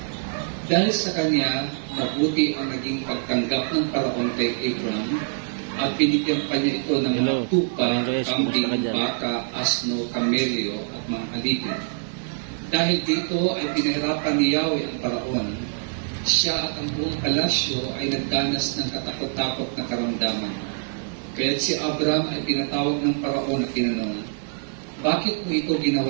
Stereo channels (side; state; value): left; silent; 62 dB below the other